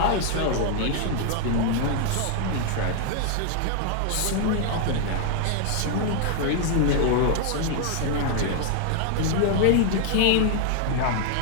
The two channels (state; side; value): different; both; correlation 0.00